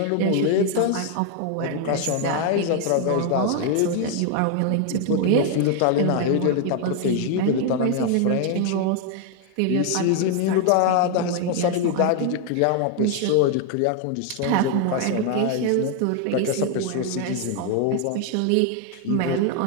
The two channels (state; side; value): different; both; correlation 0.00